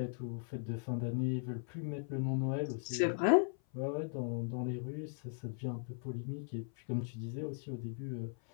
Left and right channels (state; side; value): silent; right; 52 dB below the other